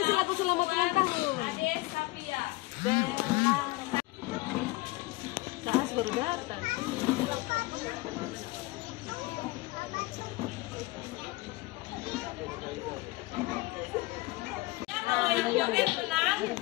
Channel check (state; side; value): quieter; right; 21.2 dB